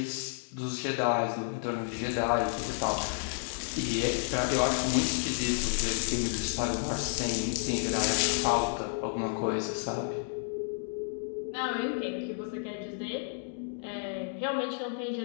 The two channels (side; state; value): right; silent; digital silence